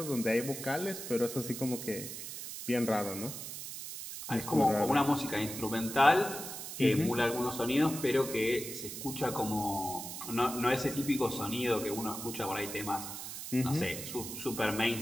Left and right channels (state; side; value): noise; right; hiss, 8 dB below the sound